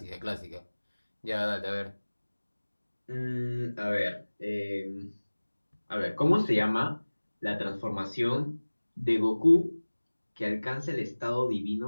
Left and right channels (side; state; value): both; inverted; correlation -1.00